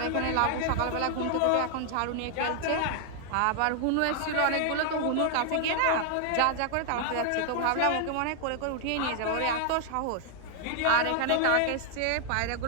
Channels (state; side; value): different; both; correlation 0.00